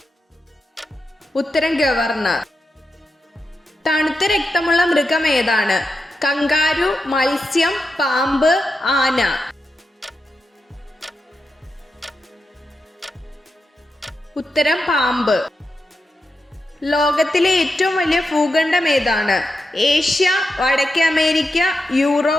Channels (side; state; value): both; normal; correlation 0.88